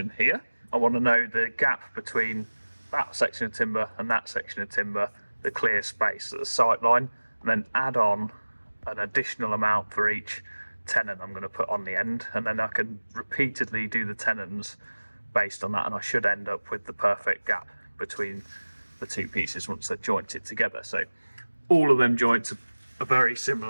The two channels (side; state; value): both; inverted; correlation -1.00